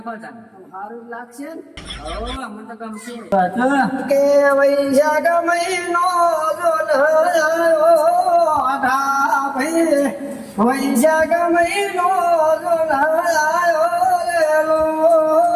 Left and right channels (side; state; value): both; identical; correlation 1.00